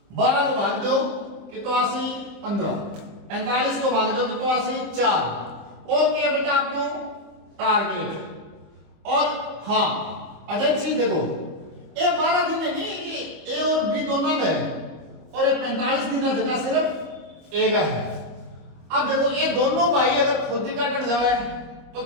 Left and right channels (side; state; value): left; late; 25 ms